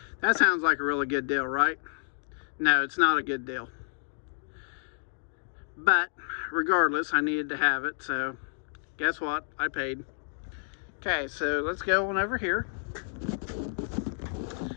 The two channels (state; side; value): silent; right; digital silence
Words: that sounds like a really good deal, right? No, it's not a good deal, but regardless, I needed to have it, so guess what? I paid. Okay, so let's go on over here.